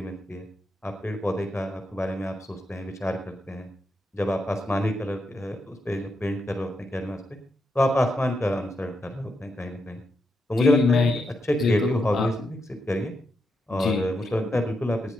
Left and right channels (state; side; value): normal; both; correlation 0.84